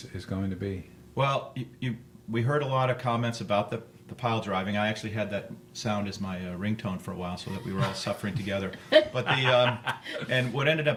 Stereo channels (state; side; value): identical; both; correlation 1.00